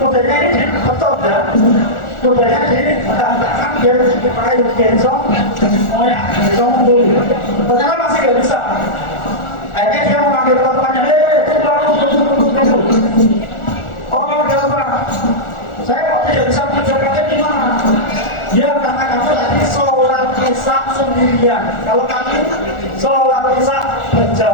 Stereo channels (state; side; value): late; right; 1.4 ms